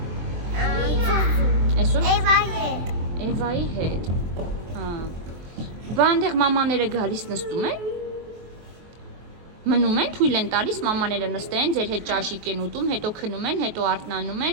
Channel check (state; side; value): late; left; 23 ms